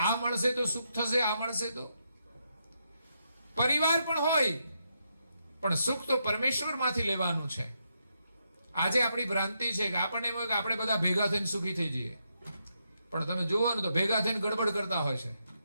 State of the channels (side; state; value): both; inverted; correlation -0.81